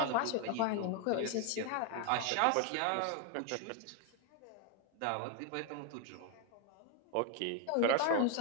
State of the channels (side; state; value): both; different; correlation 0.01